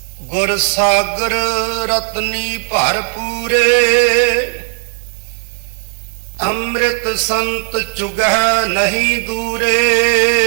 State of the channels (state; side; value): silent; left; digital silence